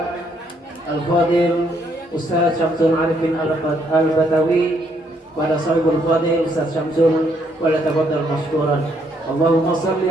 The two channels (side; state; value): both; normal; correlation 0.71